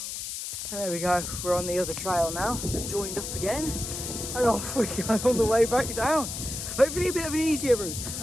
there we go, we're on the other trail now. They've joined up again, and off we go on the way back down. Hopefully a bit of an easier route.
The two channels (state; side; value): noise; left; hiss, 6 dB below the sound